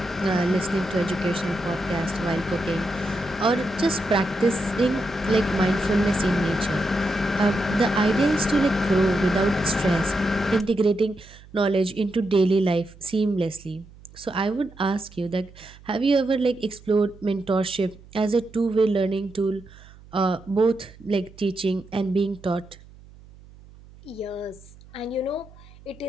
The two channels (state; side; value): noise; right; hum, 22 dB below the sound